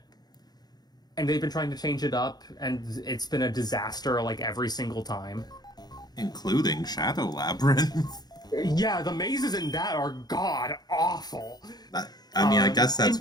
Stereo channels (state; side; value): late; right; 0.19 ms